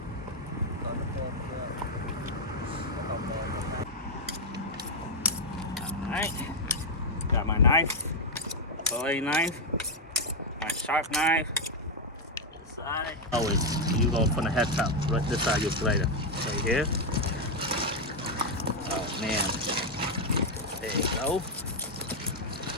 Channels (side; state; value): both; normal; correlation 0.01